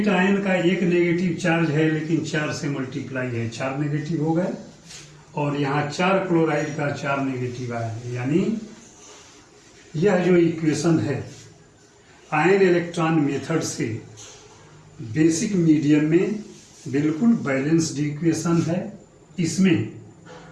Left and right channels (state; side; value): identical; both; correlation 1.00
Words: आयन का एक नेगेटिव चार्ज है, लेकिन 4 से मल्टीप्लाई है, 4 नेगेटिव हो गए। और यहाँ 4 क्लोराइड का 4 नेगेटिव आया है, यानी यह जो इक्वेशन है आयन इलेक्ट्रॉन मेथड से बेसिक मीडियम में बिल्कुल बैलेंस्ड इक्वेशन है। इसमें